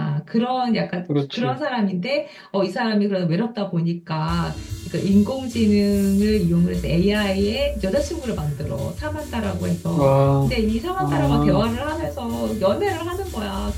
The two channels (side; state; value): both; identical; correlation 1.00